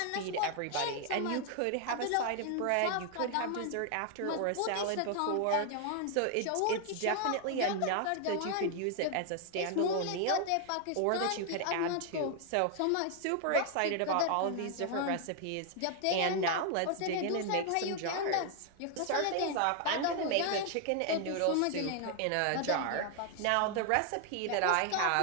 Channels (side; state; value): both; different; correlation 0.00